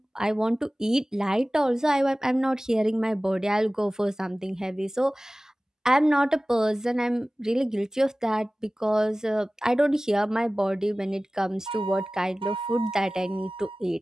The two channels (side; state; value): both; normal; correlation 0.97